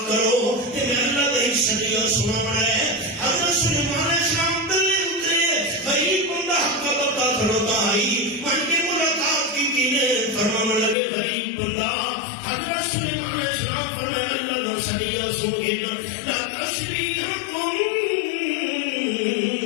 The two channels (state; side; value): drops out; right; at 11.0 s